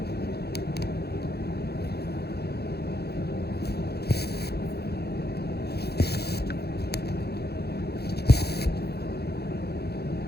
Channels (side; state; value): right; late; 0.47 ms